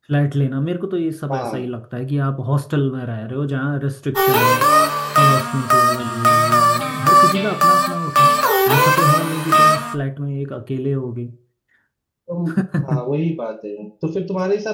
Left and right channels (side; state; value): both; identical; correlation 1.00